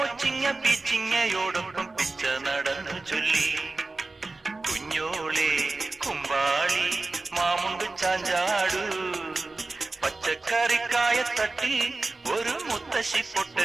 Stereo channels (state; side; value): quieter; left; 3.4 dB